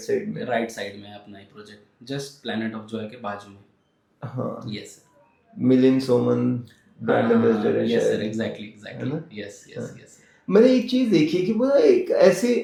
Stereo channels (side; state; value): both; identical; correlation 1.00